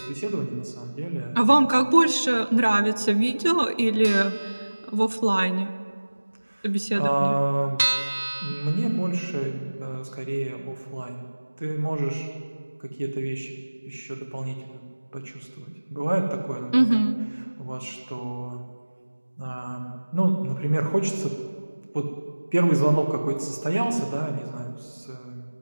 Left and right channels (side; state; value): both; inverted; correlation -1.00